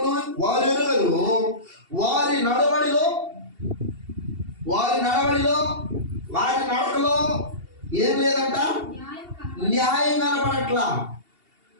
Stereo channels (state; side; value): late; left; 2.8 ms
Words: వారు ఎరుగరు, వారి నడవడిలో, వారి నడకలో ఏం లేదంట? న్యాయం కనపడట్లా.